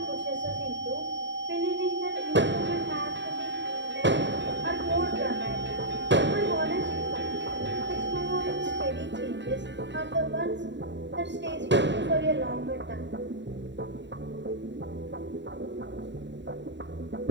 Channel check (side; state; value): left; late; 0.52 ms